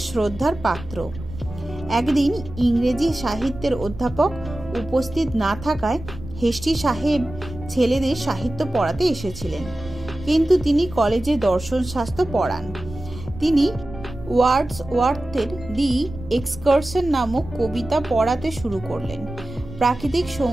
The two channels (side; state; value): right; noise; rumble, 14 dB below the sound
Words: শ্রদ্ধার পাত্র। একদিন ইংরেজি সাহিত্যের অধ্যাপক উপস্থিত না থাকায় হেস্টি সাহেব ছেলেদের সাহিত্য পড়াতে এসেছিলেন, কিন্তু তিনি কলেজে দর্শন শাস্ত্র পড়ান। তিনি ওয়ার্ডসওয়ার্থের দি এক্সকারশন নামক কবিতা পড়াতে শুরু করলেন। প্রাকৃতিক